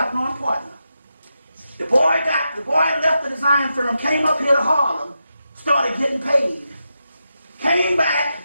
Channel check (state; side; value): inverted; both; correlation -0.87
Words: Lauren partner. The boy left the design firm, came up here to Harlem, started getting paid. Came back,